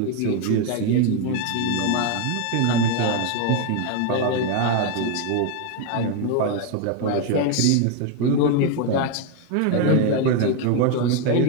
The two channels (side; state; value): both; different; correlation 0.01